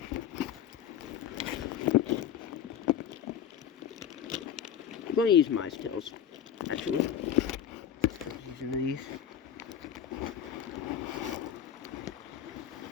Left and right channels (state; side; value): quieter; right; 9.2 dB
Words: I'm going to use mice tails, actually. I'm using these.